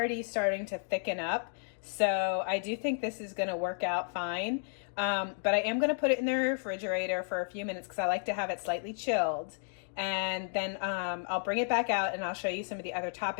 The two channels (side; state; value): right; silent; digital silence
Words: starting to thicken up. So I do think this is going to work out fine. But I am going to put it in the refrigerator for a few minutes because I like to have it slightly chilled. And then I'll bring it back out and I'll show you some of the other